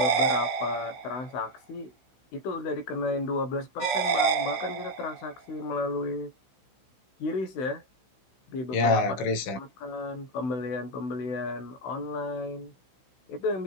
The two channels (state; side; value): late; right; 16 ms